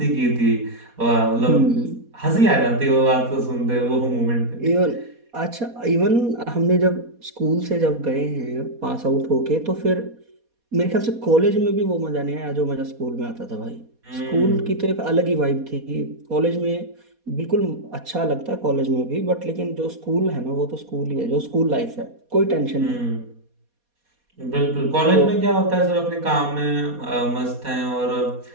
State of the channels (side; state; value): left; late; 4.2 ms